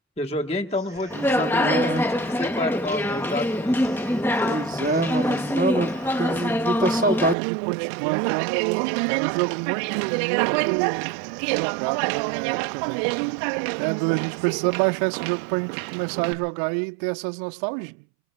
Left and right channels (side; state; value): left; drops out; at 7.4 s